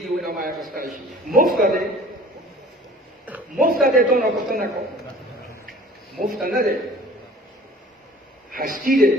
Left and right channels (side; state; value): both; normal; correlation 0.48